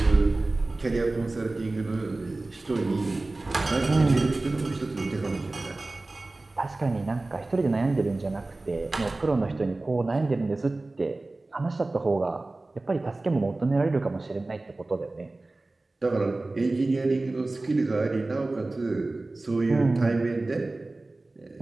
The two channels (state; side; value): quieter; left; 3.1 dB